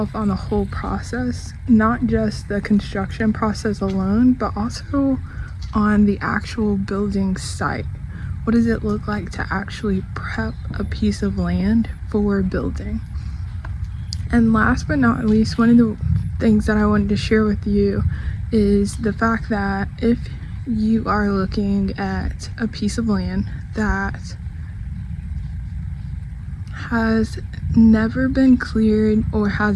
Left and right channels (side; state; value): both; identical; correlation 1.00